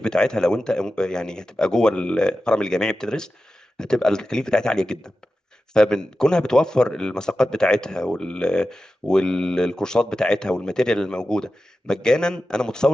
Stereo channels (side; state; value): both; normal; correlation 0.93